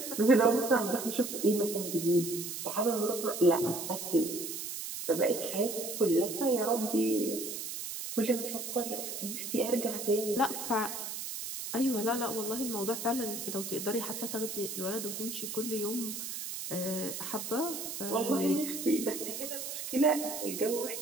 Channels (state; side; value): noise; right; hiss, 6 dB below the sound